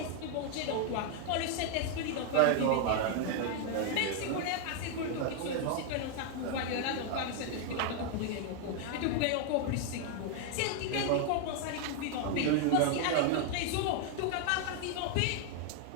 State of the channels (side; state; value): both; different; correlation 0.00